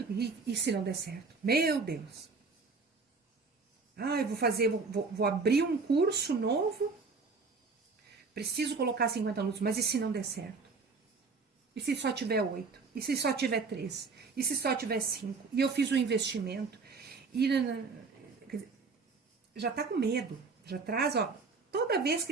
e se não der certo? Meu Deus! Eu vou abrir um curso novo, preciso colocar 50 alunos, mas e se não der certo? E se só tiver 8? E se só tiver 3? E se só tiver 5? E eu fiz um investimento, e já está com medo, já traz, toda vez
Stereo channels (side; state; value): left; quieter; 4.5 dB